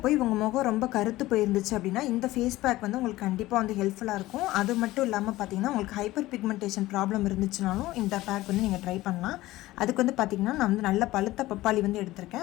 போய் உங்கள் முகம் ரொம்ப கருத்து போயிருந்துச்சு அப்படின்னா இந்த ஃபேஸ் பேக் வந்து உங்களுக்கு கண்டிப்பாக வந்து ஹெல்ப்ஃபுல்லாக இருக்கும். அது மட்டும் இல்லாமல் பார்த்தீங்கன்னா உங்களுக்கு ஹைப்பர் பிக்மெண்டேஷன் ப்ராப்ளம் இருந்துச்சுனாலும் இந்த பேக் வந்து நீங்கள் ட்ரை பண்ணலாம். அதுக்கு வந்து பார்த்திங்கன்னா நான் வந்து நல்ல பழுத்த பப்பாளி வந்து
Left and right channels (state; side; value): quieter; right; 17.4 dB